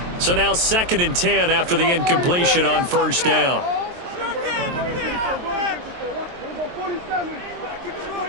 So now 2nd and 10 after the incompletion on 1st down.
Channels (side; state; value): left; late; 23 ms